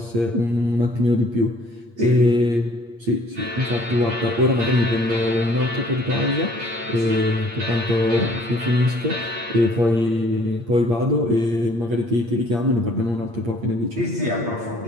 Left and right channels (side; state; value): left; late; 8.6 ms